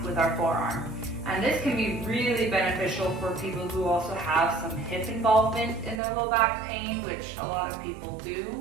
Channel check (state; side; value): drops out; left; at 6.0 s